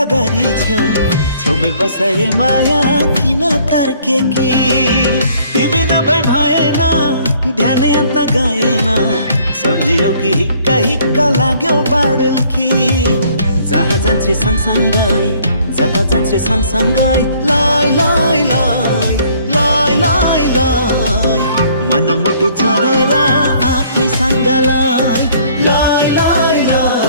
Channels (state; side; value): inverted; both; correlation -0.60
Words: गरी छेउ छेउमै बसाए माया किन तर्के कि तिमी नभए भएन ध्यानै अन्त गएन सम्झियौ कि हिक्का हिक्का लाग्यो बाडल कि जहाँ जान्छे सँगसँगै जता जान्छे सँगसँगै लाई लाई लाई लाई लाई लाई मन मुटु छोडेर आफैसँग लाई